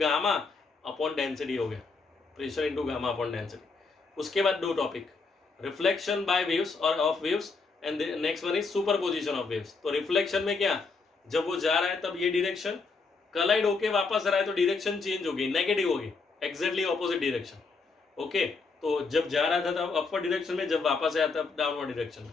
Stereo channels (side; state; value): right; quieter; 4.3 dB